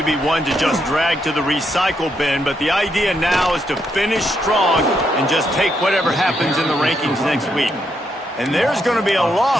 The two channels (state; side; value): normal; both; correlation 0.78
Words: be one to just drag to the recycle bin, but the idea now is to finish strong and just take whatever happens in the rankings next week. And there's going to be a